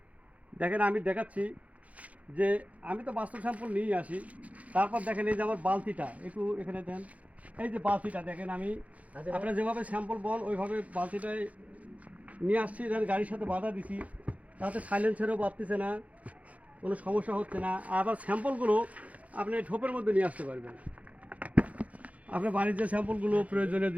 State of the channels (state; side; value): late; left; 0.068 ms